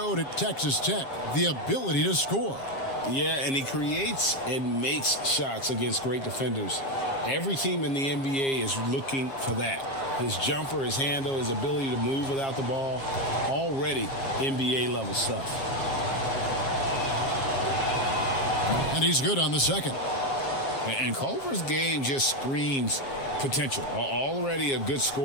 at Texas Tech, the ability to score. Yeah, and he creates and makes shots against great defenders. Every team in the NBA is looking for that. His jumper, his handle, his ability to move without the ball, already NBA level stuff. And he's good on the second. And Culver's game just screams potential. Already a good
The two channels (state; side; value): late; right; 7.4 ms